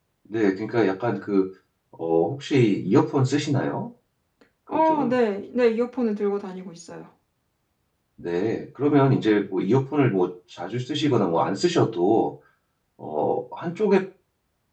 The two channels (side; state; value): both; identical; correlation 1.00